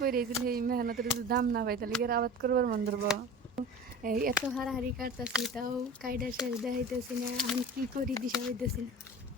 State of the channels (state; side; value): normal; both; correlation 0.37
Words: যদি সেই মেহনতের যদি দাম না পাই তাহলে কি আর আবাদ করবার মন ধরবো? এই এত হারাহারি কাটতেছি তাও কাইডা শেষ দেখাইতেছি না, আমি কি করি দিশা হইতেছি না।